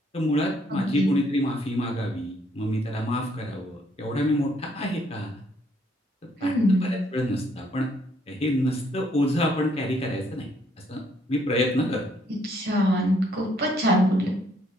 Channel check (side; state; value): both; normal; correlation 0.68